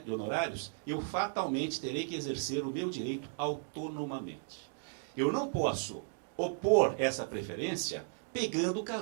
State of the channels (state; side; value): silent; left; digital silence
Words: de honorários, eu fatalmente terei que exercer o meu direito autonomamente. Eu não posso opor essa preferência pegando